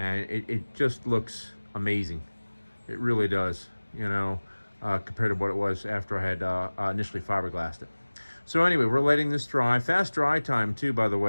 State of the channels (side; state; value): both; inverted; correlation -1.00